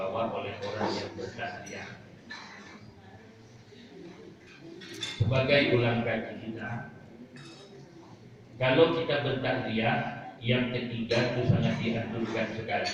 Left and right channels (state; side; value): identical; both; correlation 1.00